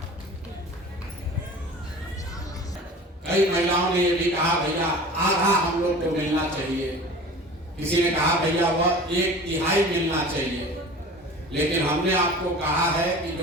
कई महिलाओं ने ये भी कहा भैया आधा हम लोग को मिलना चाहिए, किसी ने कहा भैया वह 1/3 मिलना चाहिए। लेकिन हमने आपको कहा है कि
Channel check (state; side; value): normal; both; correlation 0.40